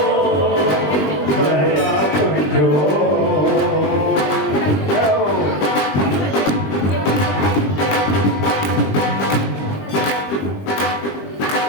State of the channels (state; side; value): late; right; 20 ms